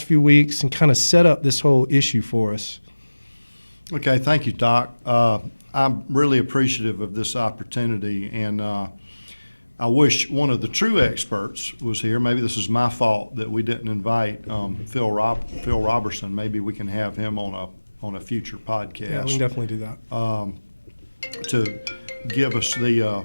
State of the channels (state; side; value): inverted; both; correlation -1.00